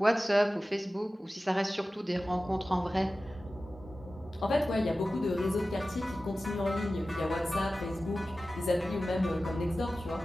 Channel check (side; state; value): both; normal; correlation 0.95